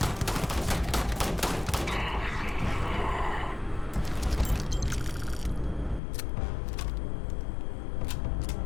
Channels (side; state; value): right; drops out; at 6.0 s